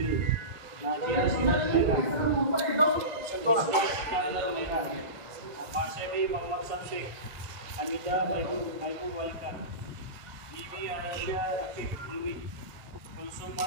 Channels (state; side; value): late; left; 1.6 ms